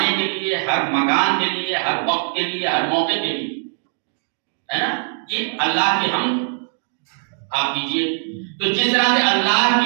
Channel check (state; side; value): silent; left; 60 dB below the other